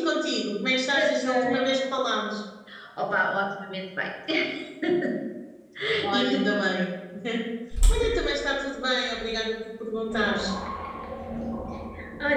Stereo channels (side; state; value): both; identical; correlation 1.00